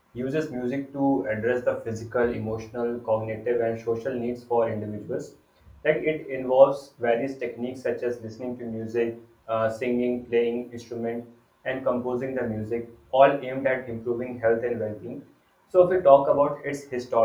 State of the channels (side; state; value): both; identical; correlation 1.00